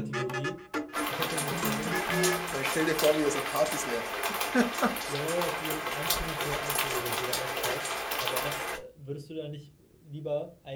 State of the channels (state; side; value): identical; both; correlation 1.00